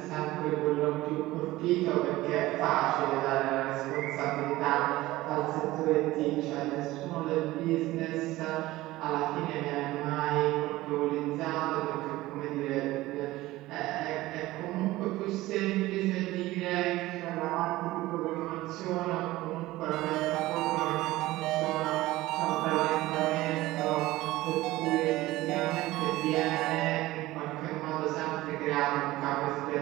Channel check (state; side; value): quieter; left; 17.7 dB